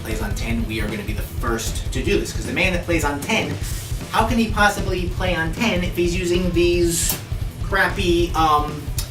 plays on 10, we are going to be the first to do this. Because the man that plays on 10, how can he possibly play on 10 if he's using these crappy,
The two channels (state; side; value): identical; both; correlation 1.00